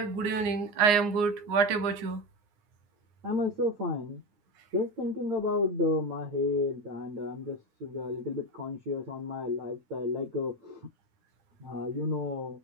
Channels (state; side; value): late; left; 9.7 ms